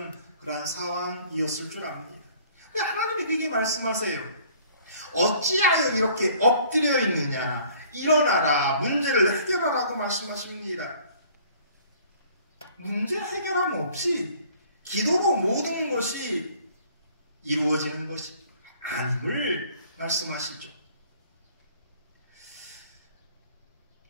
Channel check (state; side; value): inverted; both; correlation -0.55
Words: 그러한 상황이었을 줄 압니다. 근데 하나님이 그게 말씀하세요. 어찌하여 이렇게 엎드려 있느냐. 일어나라. 문제를 해결하라고 말씀하십니다. 문제 해결함 없이 기도로 모든 것이 이루어지는 것이 아님을 말씀하시죠.